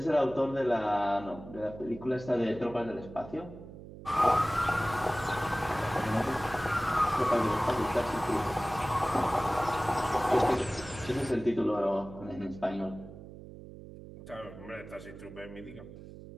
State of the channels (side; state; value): right; noise; hum, 15 dB below the sound